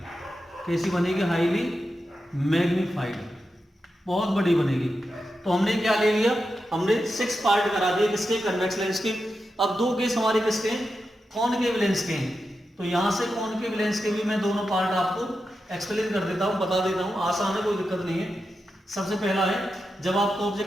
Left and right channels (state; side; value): normal; both; correlation 0.89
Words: कैसी बनेगी, हाईली मैग्नीफाइड, बहुत बड़ी बनेगी। तो हमने क्या ले लिया, हमने 6 पार्ट करा दिए किसके, कन्वेक्स लेंस के। अब 2 केस हमारे किसके हैं, कॉनकेव लेंस के हैं। तो यहां से कॉनकेव लेंस के भी मैं दोनों पार्ट आपको एक्सप्लेन कर देता हूं, बता देता हूं, आसान है, कोई दिक्कत नहीं है। सबसे पहला है, जब आपका